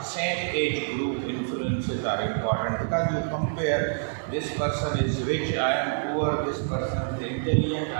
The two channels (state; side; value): silent; left; digital silence